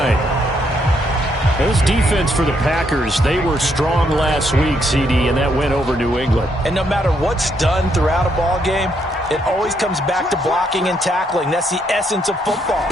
This defense for the Packers, they were strong last week, CD, and that went over New England. And no matter what's done throughout a ball game, it always comes back to blocking and tackling. That's the essence of football.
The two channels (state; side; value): normal; both; correlation 0.74